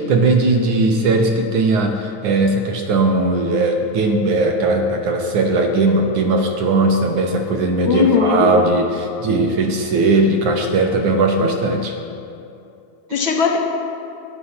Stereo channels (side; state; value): left; late; 9.7 ms